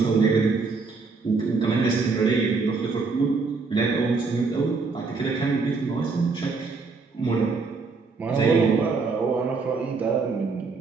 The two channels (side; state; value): left; quieter; 4.4 dB